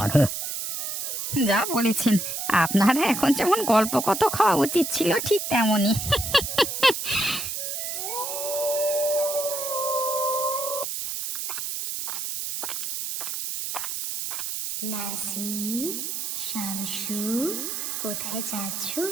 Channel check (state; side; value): noise; right; hiss, 4 dB below the sound